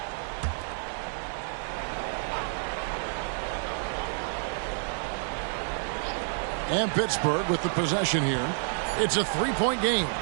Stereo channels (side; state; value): left; silent; digital silence